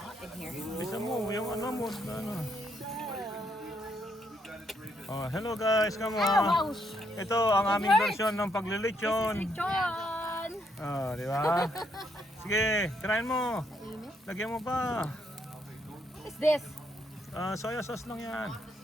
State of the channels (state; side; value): normal; both; correlation 0.74